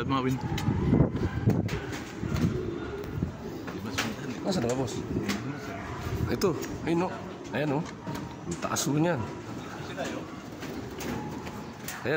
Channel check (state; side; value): identical; both; correlation 1.00